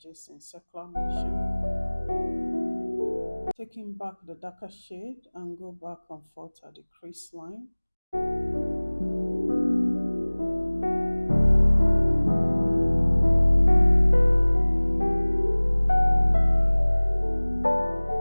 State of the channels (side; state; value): both; inverted; correlation -1.00